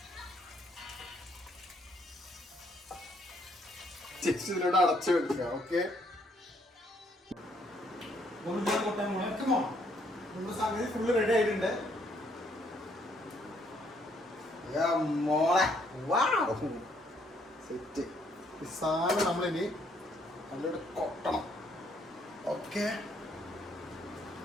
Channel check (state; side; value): normal; both; correlation 0.69